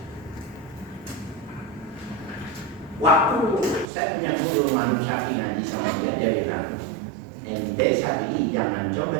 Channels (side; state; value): left; drops out; at 3.9 s